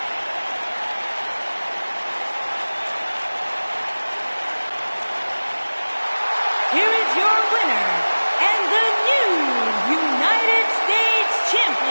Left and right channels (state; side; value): inverted; both; correlation -1.00